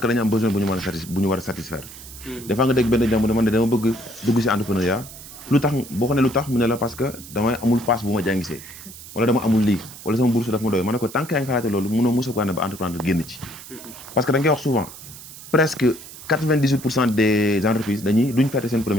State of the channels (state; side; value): noise; right; hiss, 15 dB below the sound